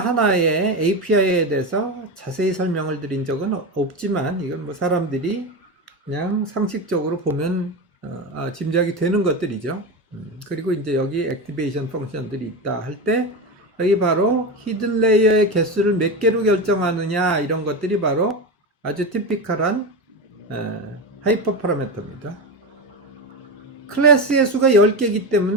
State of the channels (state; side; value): normal; both; correlation 0.19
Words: API에 대해서 자세히 설명을 드린 적은 없지만 이건 뭐 사람들이 그냥 상식적으로 보면 짐작이 되는 것들이죠. 그리고 이제 여기 액티베이션 펑션들이 있다 할 때 여기 바로 히든 레이어의 개수를 몇 개로 결정하느냐 이런 것들이 바로 아주 티피컬한 하이퍼 파라미터입니다. 클래스의 수가 10개이기